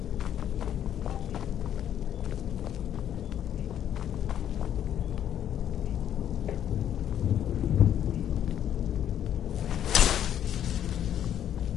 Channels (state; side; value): quieter; right; 10.2 dB